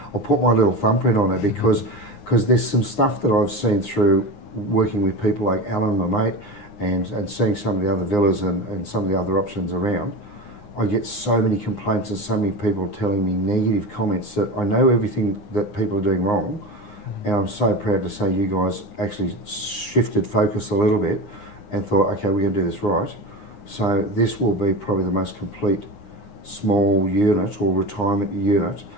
put my little thumbprint on it because there's some stuff that I've seen through working with people like Alan, my mate, and seeing some of the other villas and some of the other options around. I get so many complaints and so many people telling me negative comments that I know everything that people are doing wrong, and I'm so proud to say you guys actually shifted focus a little bit and thought, okay, we're going to do this right. So this will be probably the most complete small unit or retirement unit,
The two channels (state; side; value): late; right; 9.7 ms